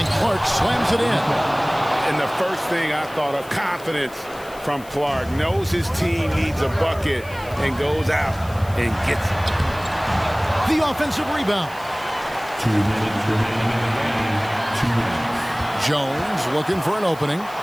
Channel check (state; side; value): noise; left; hiss, 21 dB below the sound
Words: Clark slams it in. And the first thing I thought of, confidence from Clark. Knows his team needs a bucket and goes out and gets it. The offensive rebound. 2 minutes remaining in the game. 2 minutes. Jones looking for an opening,